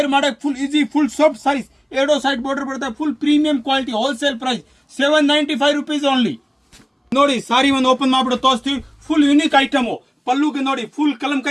ಮಾಡಕ್ಕೆ full easy, full soft saris. ಎರಡೋ ಸೈಡ್ ಬಾರ್ಡರ್ ಬರುತ್ತೆ. Full premium quality, wholesale price 795 rupees only. ನೋಡಿ ಸಾರಿ ಒಂದು ಓಪನ್ ಮಾಡ್ಬಿಟ್ಟು ತೋರಿಸ್ತೀವಿ. Full unique item. ಪಲ್ಲುಗೆ ನೋಡಿ ಫುಲ್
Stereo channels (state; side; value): identical; both; correlation 1.00